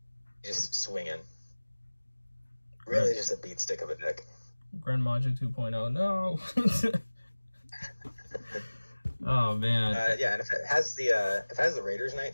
Just swinging. Really just a beat stick of a deck. Grand Maja 2.0, no. Oh man. Yeah, and if it has the Raiders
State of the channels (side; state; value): both; inverted; correlation -1.00